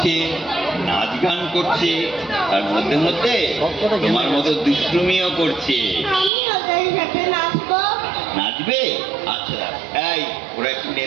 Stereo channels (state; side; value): drops out; left; at 6.3 s